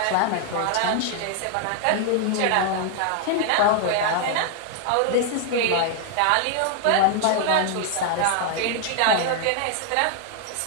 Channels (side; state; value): both; different; correlation 0.00